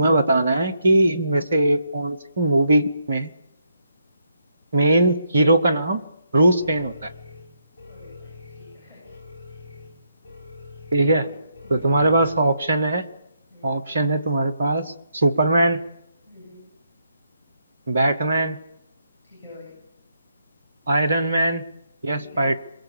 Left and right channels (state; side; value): inverted; both; correlation -0.77